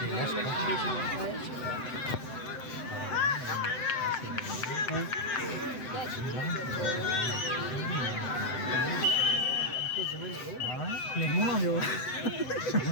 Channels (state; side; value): late; right; 7.9 ms